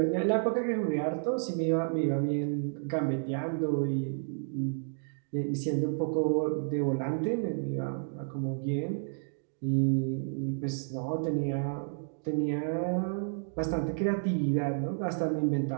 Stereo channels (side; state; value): left; silent; digital silence